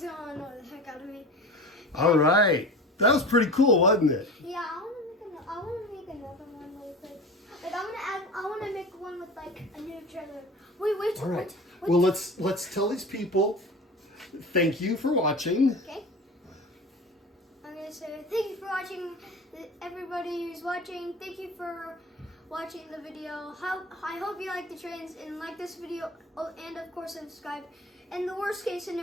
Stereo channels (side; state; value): both; normal; correlation 0.34